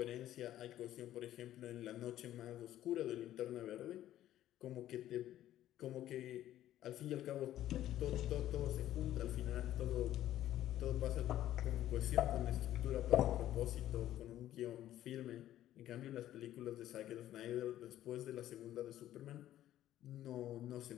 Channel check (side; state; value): right; quieter; 12.9 dB